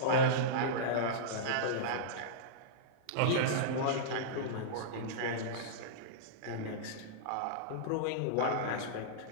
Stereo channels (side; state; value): both; different; correlation -0.03